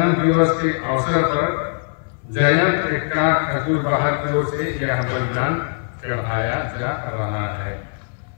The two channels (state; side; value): silent; right; 59 dB below the other